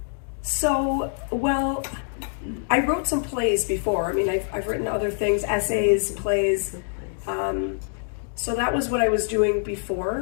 Well, I wrote some plays before. I mean, I've written other things, essays, plays. So that was what I was doing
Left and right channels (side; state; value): right; silent; digital silence